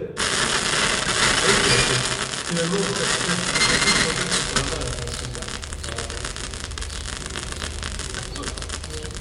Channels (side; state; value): both; identical; correlation 1.00